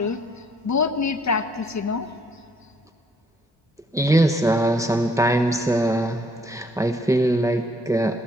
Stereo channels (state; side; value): normal; both; correlation 0.66